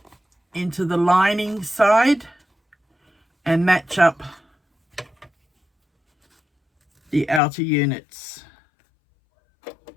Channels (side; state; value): right; drops out; at 7.4 s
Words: into the lining side and match up the outer units.